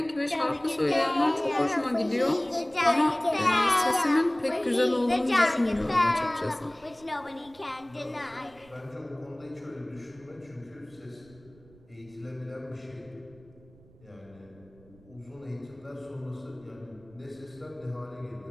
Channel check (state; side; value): noise; right; rumble, 26 dB below the sound